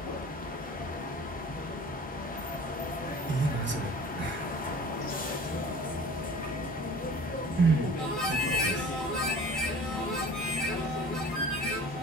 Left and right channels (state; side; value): normal; both; correlation 0.43